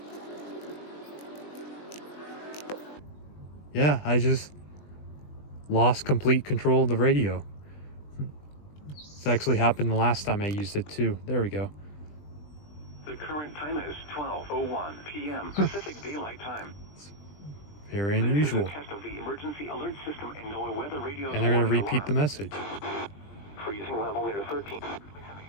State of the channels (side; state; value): right; late; 20 ms